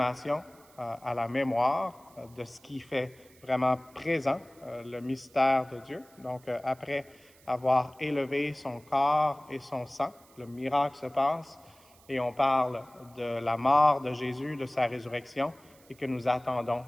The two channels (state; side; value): noise; right; hiss, 27 dB below the sound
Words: à la mémoire de ce qui fait vraiment présent le mystère de Dieu. Donc, après avoir élevé son corps et son sang, le miracle se passe et on parle de la mort de Jésus, de sa résurrection et que nous attendons